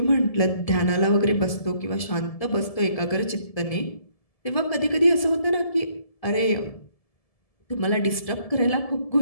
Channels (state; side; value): late; right; 1.7 ms